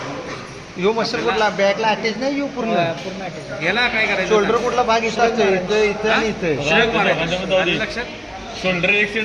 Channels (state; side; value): identical; both; correlation 1.00